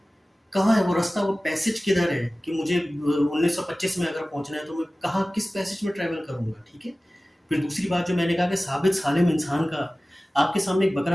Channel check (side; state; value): both; normal; correlation 0.97